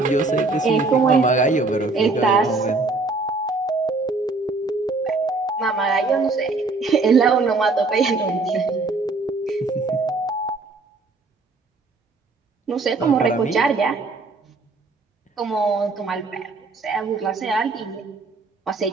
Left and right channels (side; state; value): left; quieter; 3.7 dB